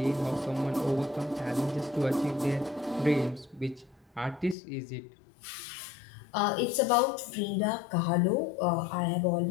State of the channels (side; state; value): right; drops out; at 4.5 s